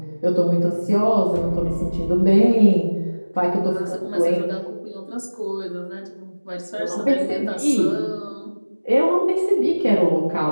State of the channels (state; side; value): inverted; both; correlation -1.00